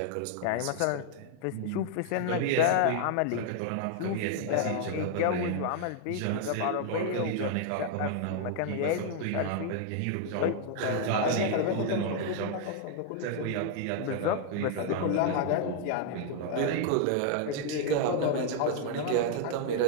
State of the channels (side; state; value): both; different; correlation 0.00